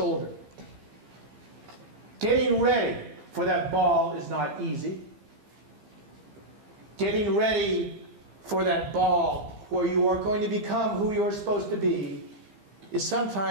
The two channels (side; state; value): left; late; 15 ms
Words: Getting ready for that ball is not easy. Getting ready for that ball where you are going to become who you're supposed to be is